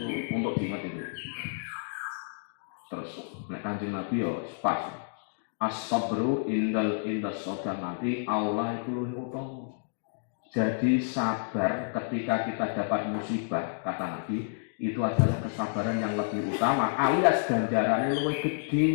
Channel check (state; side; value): silent; right; digital silence